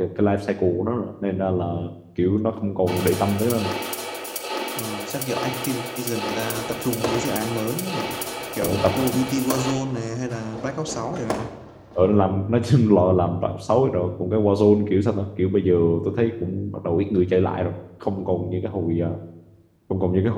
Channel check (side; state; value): both; identical; correlation 1.00